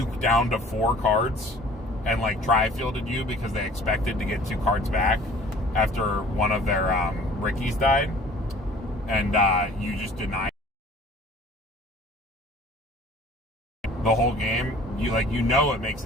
down to 4 cards and like tri-fielded you because they expected to get 2 cards back after one of their Rickies died, and you just denied the whole game? You know it makes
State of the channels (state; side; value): normal; both; correlation 0.50